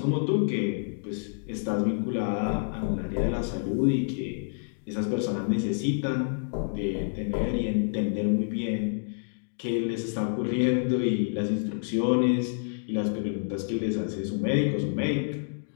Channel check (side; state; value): right; silent; digital silence